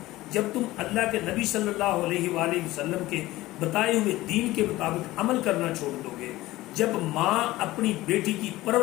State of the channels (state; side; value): quieter; right; 17.6 dB